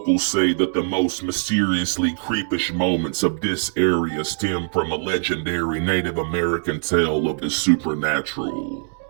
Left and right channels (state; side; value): silent; left; digital silence